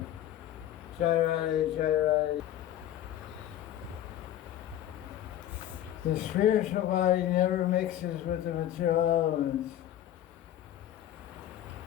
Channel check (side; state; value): right; quieter; 12.1 dB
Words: Jai Radhe. The spiritual body never mixes with the material elements.